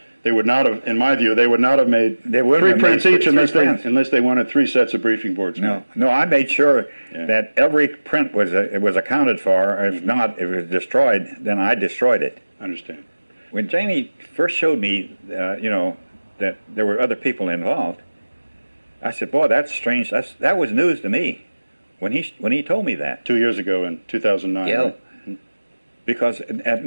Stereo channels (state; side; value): inverted; both; correlation -1.00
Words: they would not have, in my view, they would not have made 3 prints each unless they wanted 3 sets of briefing boards. No, I made sure that every print was accounted for. If not, if it was destroyed, then I destroyed it. I understand. When Janney first showed me, that there were other people involved, I said, "Boy, that's strange. That was news to me when he told me that." 2 years ago in 2009. Yeah. Right? Because at